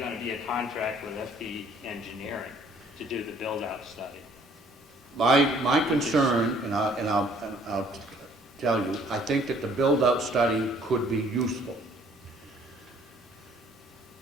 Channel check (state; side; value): normal; both; correlation 0.59